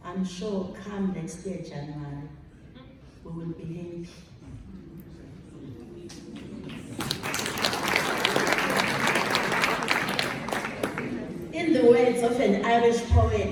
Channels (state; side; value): identical; both; correlation 1.00